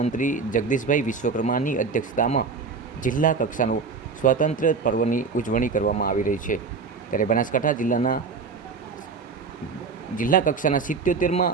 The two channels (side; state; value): left; quieter; 4.9 dB